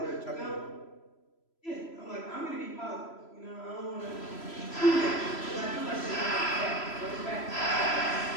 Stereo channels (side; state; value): right; late; 3.0 ms